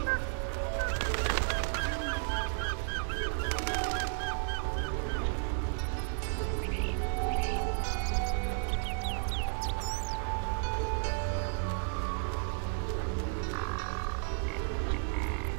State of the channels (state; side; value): silent; left; 56 dB below the other